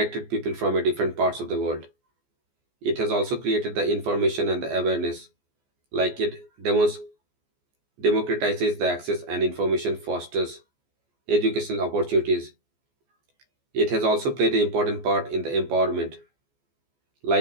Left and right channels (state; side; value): late; left; 14 ms